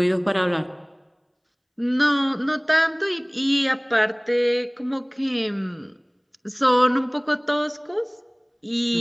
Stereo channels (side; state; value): both; identical; correlation 1.00